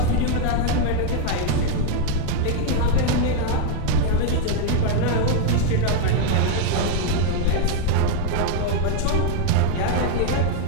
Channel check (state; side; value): different; both; correlation 0.01